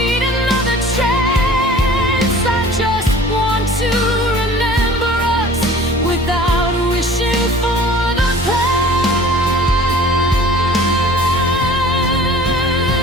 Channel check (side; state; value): both; normal; correlation 0.46